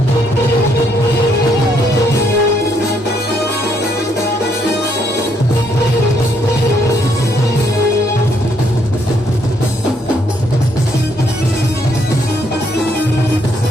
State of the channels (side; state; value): both; normal; correlation 0.72